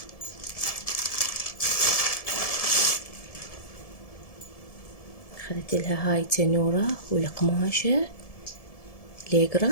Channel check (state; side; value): late; right; 1.7 ms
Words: أخذت لها هاي تنورة والقماشة